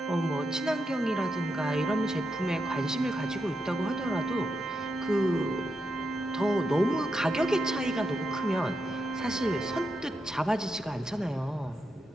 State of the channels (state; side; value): normal; both; correlation 0.85